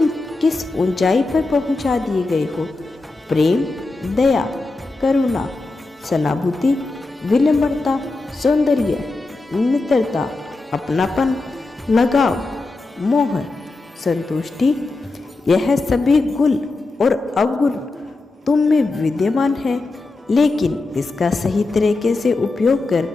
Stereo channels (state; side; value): quieter; right; 3.3 dB